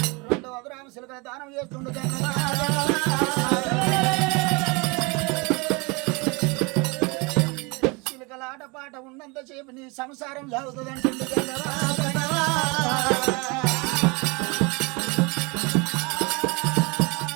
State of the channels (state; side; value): quieter; left; 28.1 dB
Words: 2 అదురామ సిలుకల దానం చేస్తుండగా ఆటపాట ఉన్నంతసేపు నీ సంసారం సాగుతుందంటుంది.